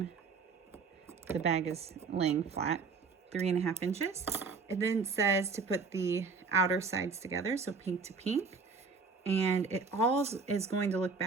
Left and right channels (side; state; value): left; quieter; 4.9 dB